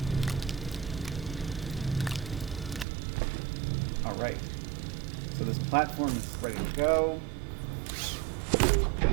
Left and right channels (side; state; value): left; drops out; at 2.9 s